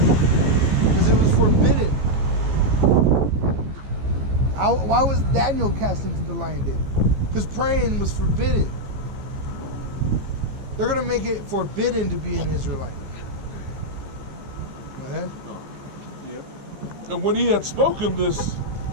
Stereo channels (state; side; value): late; left; 15 ms